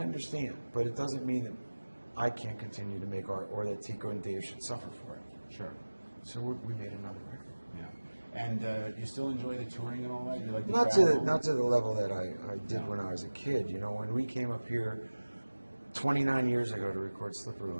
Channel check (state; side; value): inverted; both; correlation -1.00